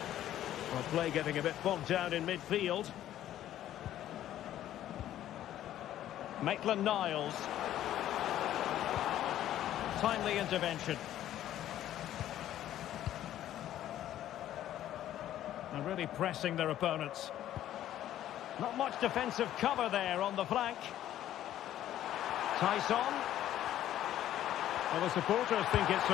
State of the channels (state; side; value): quieter; right; 12.3 dB